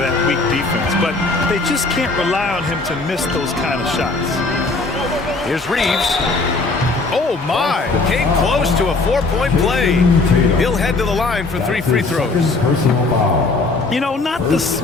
weak defense, but they just can't rely on him to miss those kind of shots. Here's Reeves. Oh my! Came close to a 4-point play. He'll head to the line for 3 free throws. You know, not the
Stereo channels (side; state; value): right; quieter; 3.5 dB